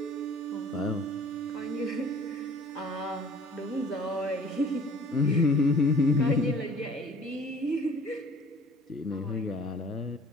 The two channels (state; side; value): normal; both; correlation 0.50